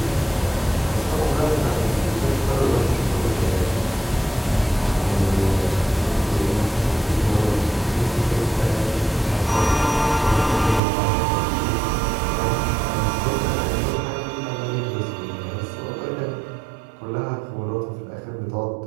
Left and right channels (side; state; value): left; drops out; at 10.8 s